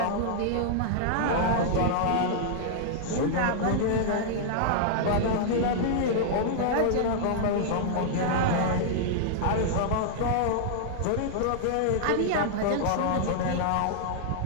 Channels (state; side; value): different; both; correlation -0.01